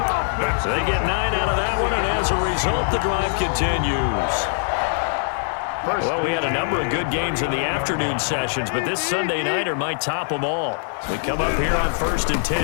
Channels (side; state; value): right; silent; 64 dB below the other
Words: So they get 9 out of that one, and as a result, the drive continues. Well, we had a number of good games in the afternoon sessions, but this Sunday nighter might top them all. We come up here on 1st and 10.